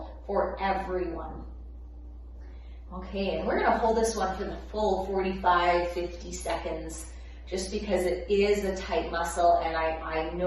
for everyone. Okay, and we're gonna hold this one for the full 45, 50 seconds, just because it is a tight muscle, and I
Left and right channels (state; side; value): identical; both; correlation 1.00